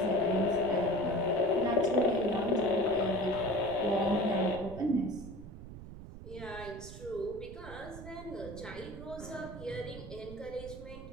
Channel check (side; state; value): right; noise; rumble, 13 dB below the sound